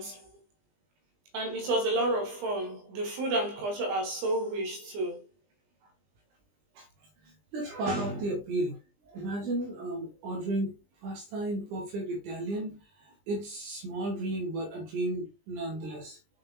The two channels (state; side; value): late; left; 20 ms